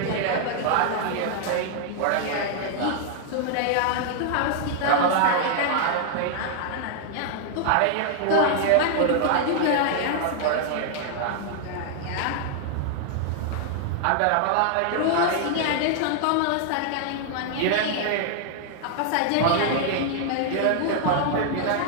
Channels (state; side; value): different; both; correlation -0.01